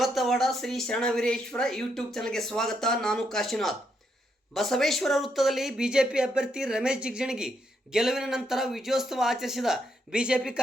ಶ್ರೀ ಶರಣವೀರೇಶ್ವರ ಯೂಟ್ಯೂಬ್ ಚಾನಲ್ಗೆ ಸ್ವಾಗತ. ನಾನು ಕಾಶಿನಾಥ್. ಬಸವೇಶ್ವರ ವೃತ್ತದಲ್ಲಿ ಬಿಜೆಪಿ ಅಭ್ಯರ್ಥಿ ರಮೇಶ್ ಜಿಗಜಿಣಗಿ ಗೆಲುವಿನ ನಂತರ ವಿಜಯೋತ್ಸವ ಆಚರಿಸಿದ ಬಿಜೆಪಿ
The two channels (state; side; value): normal; both; correlation 0.78